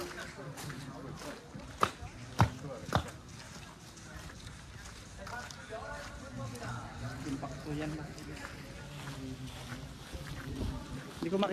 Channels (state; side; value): identical; both; correlation 1.00